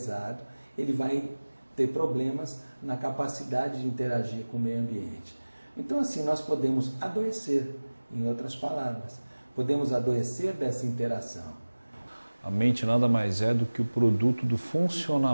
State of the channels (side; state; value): both; inverted; correlation -1.00